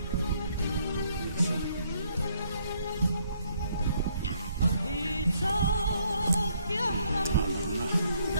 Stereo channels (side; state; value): both; inverted; correlation -0.69